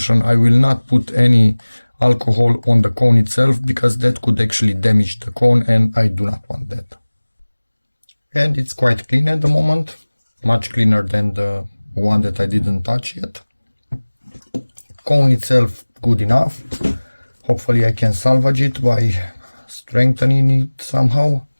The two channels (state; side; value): inverted; both; correlation -1.00